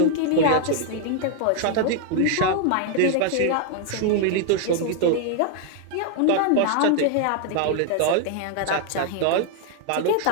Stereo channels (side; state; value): both; different; correlation 0.00